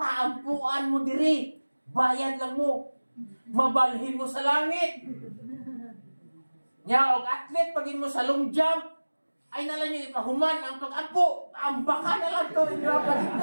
mo diri. Bayad lang mo. Mabalhin mo sa langit. Nya og athlete pagin mo sa long jump, ay nalang niyo ipahuman ang pag-ampo. Ang baka na lang to inyo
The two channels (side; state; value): both; inverted; correlation -1.00